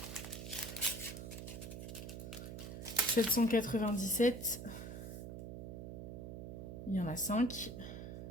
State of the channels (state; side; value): noise; right; hum, 8 dB below the sound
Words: 797, il y en a 5.